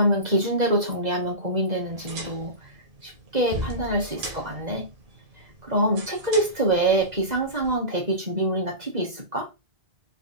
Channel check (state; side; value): late; left; 2.0 ms